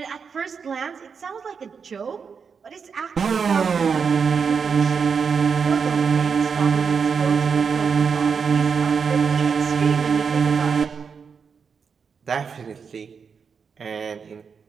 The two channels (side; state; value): left; quieter; 6.0 dB